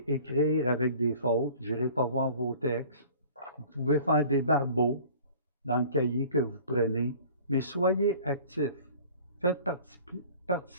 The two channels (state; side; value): inverted; both; correlation -0.47